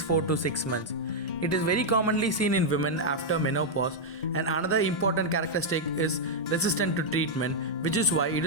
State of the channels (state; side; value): normal; both; correlation -0.03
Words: 4 to 6 months. It is very commonly seen in women after menopause, and another important characteristic is resistant to treatment, which is why it